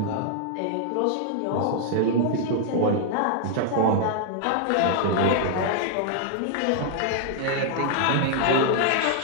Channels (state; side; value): different; both; correlation 0.00